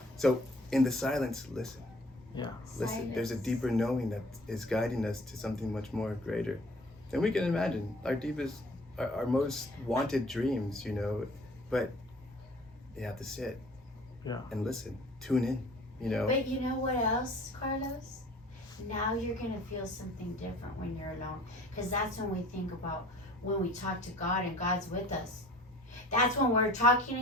So in the silence, listen. Yeah. Listen. Silence. There's a deeper knowing that is guiding us to something much more greater than we can imagine. Our deepest, our most wanted dreams, you know. But you have to sit. Yeah. And listen. Tune in. You know. But you know what else, Carlos? Now you're going to feel something different when you're alone. Because that's when we think about when we talk to God and God's with us. That's when we're talking to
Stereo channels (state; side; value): normal; both; correlation 0.50